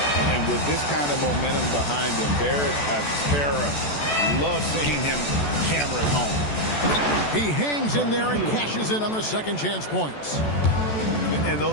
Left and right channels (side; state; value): right; late; 14 ms